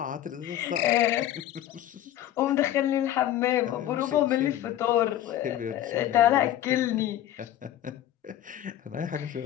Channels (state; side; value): quieter; right; 12.3 dB